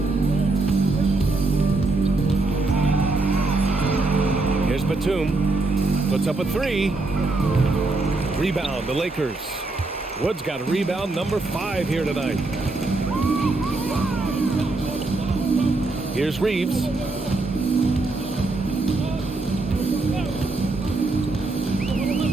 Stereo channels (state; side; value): quieter; left; 3.2 dB